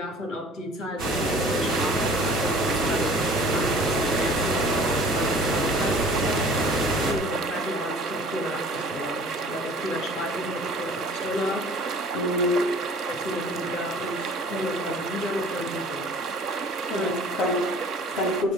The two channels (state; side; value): normal; both; correlation 0.49